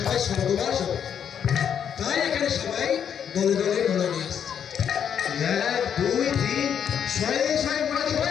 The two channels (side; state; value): right; quieter; 8.3 dB